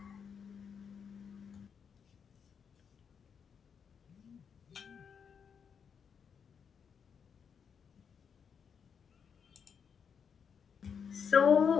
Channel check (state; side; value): quieter; right; 6.8 dB